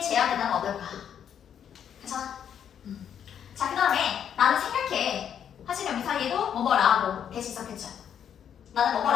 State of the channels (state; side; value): quieter; right; 8.8 dB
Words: 제한된다면 어떨까? 괜찮아? 자, 그 다음에 나는 생각해 하시면 여기 사이에도 뭐뭐라고 대신 썼겠죠 나는